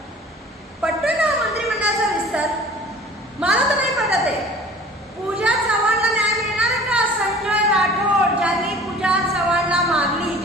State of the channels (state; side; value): normal; both; correlation 0.46